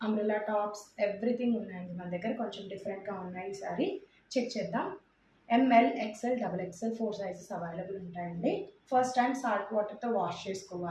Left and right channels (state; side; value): identical; both; correlation 1.00